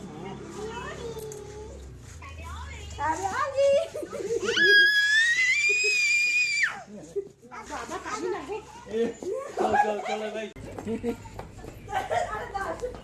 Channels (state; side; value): identical; both; correlation 1.00